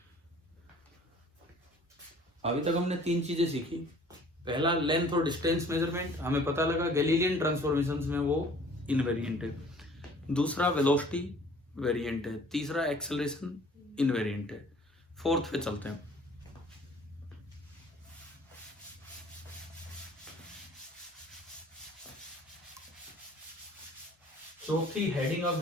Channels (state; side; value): normal; both; correlation 0.52